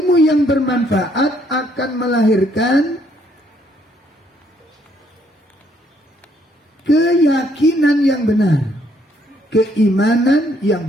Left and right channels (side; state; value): both; normal; correlation 0.69